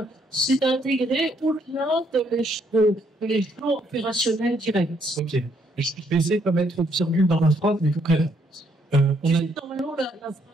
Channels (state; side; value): normal; both; correlation 0.71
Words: c'est intégré au-delà de l'échelon opérationnel direct? Ok. Je vais essayer de pas mettre trop de virgule dans ma phrase, mais concrètement. Normalement, la